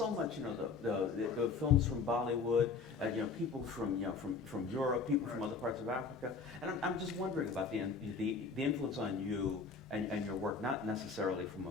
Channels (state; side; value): quieter; right; 4.9 dB